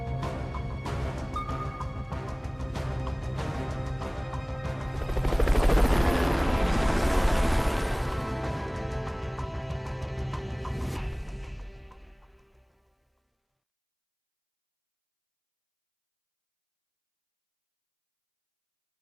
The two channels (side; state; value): both; identical; correlation 1.00